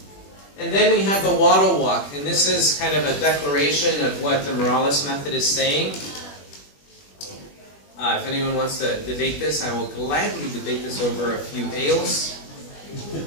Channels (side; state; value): right; late; 21 ms